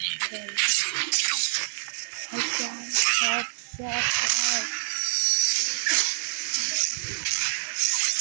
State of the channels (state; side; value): silent; left; digital silence